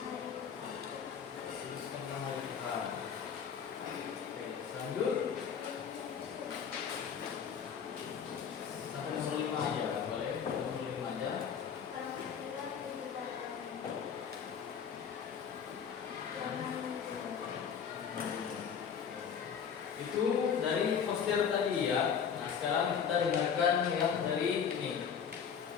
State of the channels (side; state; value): right; quieter; 7.3 dB